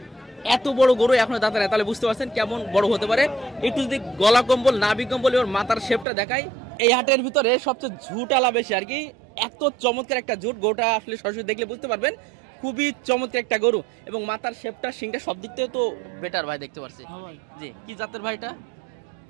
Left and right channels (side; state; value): left; drops out; at 6.1 s